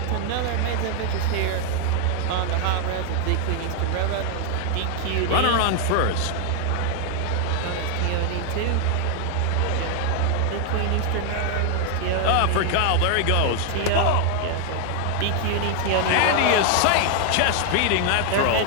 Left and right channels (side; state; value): both; different; correlation 0.00